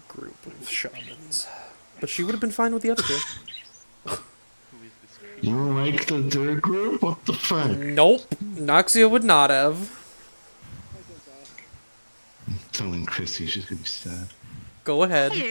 group of shamans, but she would have been fine with the other two. You like the third group? What the fuck? Nope, Noxia would not have. I'm telling Chrissy she's gonna be sad. Go ahead,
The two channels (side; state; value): both; inverted; correlation -1.00